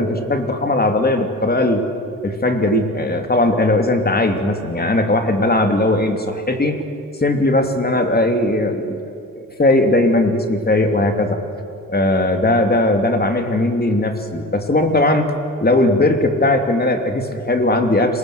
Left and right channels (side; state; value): both; normal; correlation 0.34